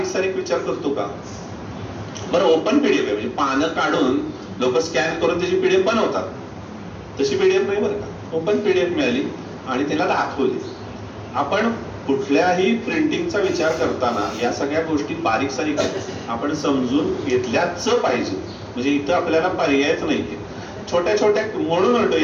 सारीक विचार करतो का? बरं, ओपन पीडीएफ आहे म्हणजे पानं काढून लोक स्कॅन करून त्याची पीडीएफ बनवतात, तशी पीडीएफ नाही बरं का. ओपन पीडीएफ मिळाली आणि तिला दाखवली. आपण कुठल्याही प्रिंटिंगचा विचार करताना या सगळ्या गोष्टी बारीक सारीक आपण समजून घेतल्याच पाहिजे. म्हणजे इथं आपल्याला पर्यायच नाहीये. छोट्या छोट्या म्हणून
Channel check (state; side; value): identical; both; correlation 1.00